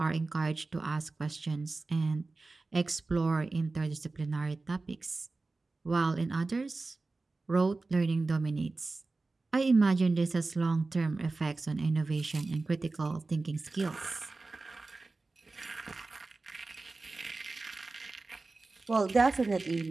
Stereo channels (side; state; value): left; quieter; 3.5 dB